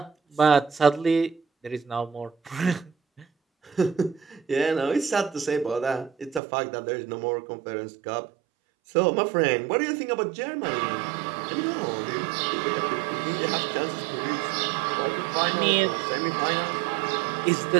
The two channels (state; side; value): drops out; left; at 6.4 s